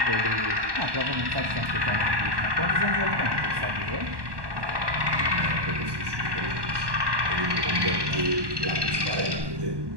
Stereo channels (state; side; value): late; left; 1.1 ms